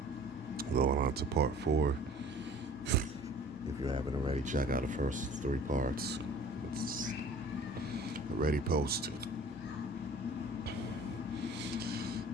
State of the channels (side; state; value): both; normal; correlation 0.47